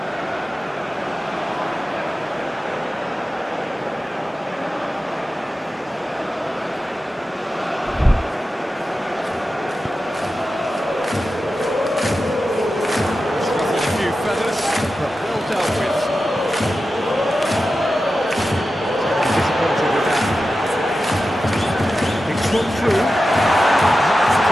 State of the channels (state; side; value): normal; both; correlation 0.92